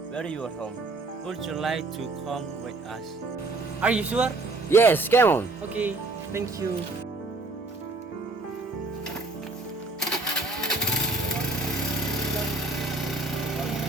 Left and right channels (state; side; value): quieter; left; 3.2 dB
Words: are your home? Would you like to come with us? Are you sure? Yes, come on. Okay, thank you.